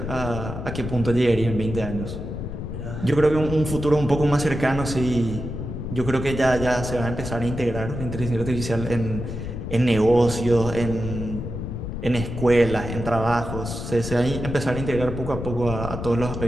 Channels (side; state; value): left; noise; rumble, 6 dB below the sound